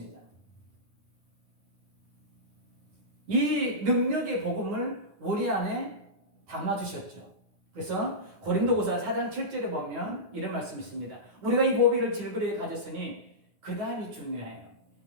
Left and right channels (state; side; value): late; left; 9.8 ms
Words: 이 능력의 복음을 우리 안에 담아주셨죠. 그래서 고린도후서 4장 7절에 보면 이런 말씀이 있습니다. 우리가 이 보배를 질그레에 가졌으니 그 다음이 중요해요.